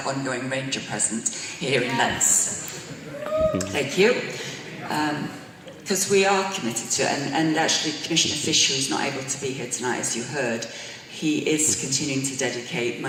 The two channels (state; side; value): identical; both; correlation 1.00